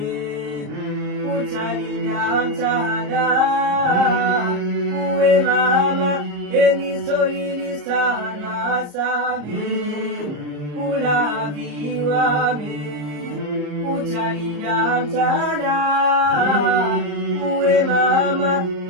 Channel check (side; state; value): left; late; 34 ms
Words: utalinda mchana uwe mama enisolili sana same ulaviwa me utalinda mchana uwe mama